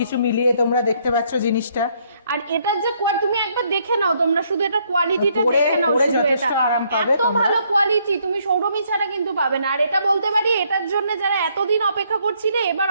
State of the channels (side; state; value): both; inverted; correlation -0.70